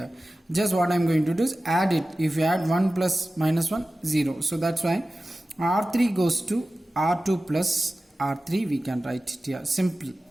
Just what I am going to do is add it. If you add 1 plus minus 1, 0. So that's why R3 goes to R2 plus R3. We can write it here. Simple.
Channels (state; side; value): normal; both; correlation 0.95